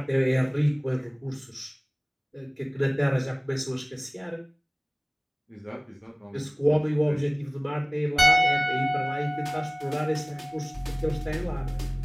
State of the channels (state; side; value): identical; both; correlation 1.00